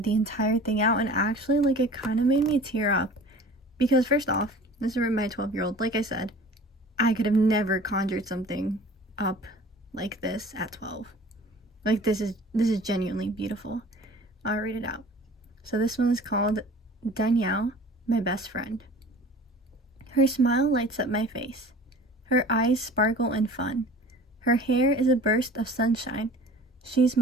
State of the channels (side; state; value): both; normal; correlation 0.44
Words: the entire thing out, and actually it kind of made me tear up, because first off, this is written by a 12-year-old. Like I said, I could have never conjured something up like this at 12. This is genuinely beautiful. I'll read it out. So this one is called Danielle, my best friend. Her smile lights up my face. Her eyes sparkle in fun. Her hair is a burst of sunshine. She's